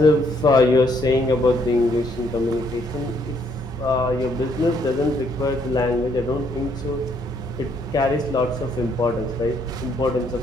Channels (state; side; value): normal; both; correlation 0.69